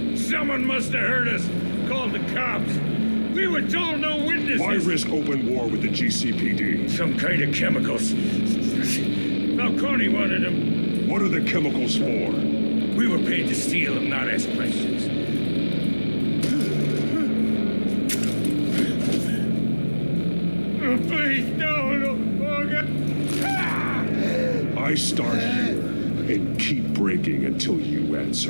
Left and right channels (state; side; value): inverted; both; correlation -1.00